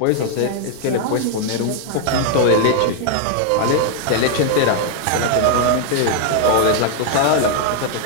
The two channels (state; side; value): different; both; correlation 0.00